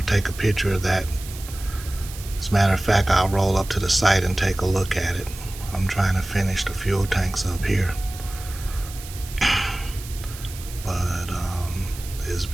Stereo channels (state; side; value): noise; right; hiss, 14 dB below the sound